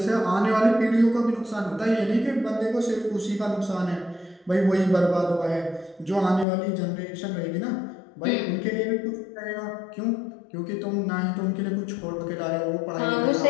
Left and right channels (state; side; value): drops out; right; at 6.5 s